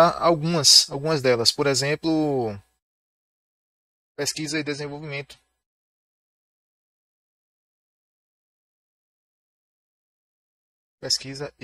algumas delas. Por exemplo, pesquisa e desenvolvimento. Pesquisa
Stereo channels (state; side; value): identical; both; correlation 1.00